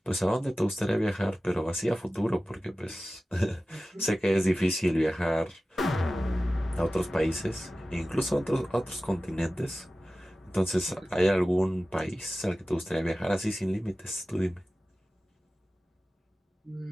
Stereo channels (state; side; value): normal; both; correlation 0.96